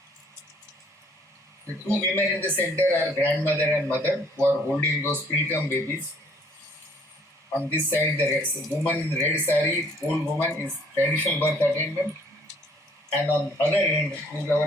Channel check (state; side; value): normal; both; correlation 0.61